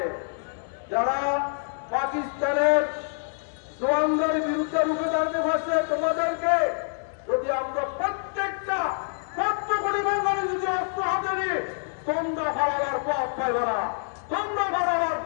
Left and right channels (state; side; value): silent; right; digital silence